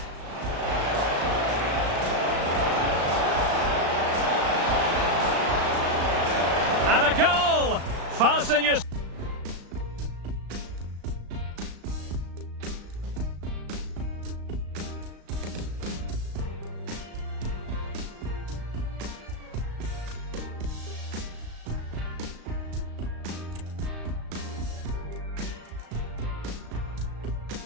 And a goal! Fasten your...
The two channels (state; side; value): late; left; 35 ms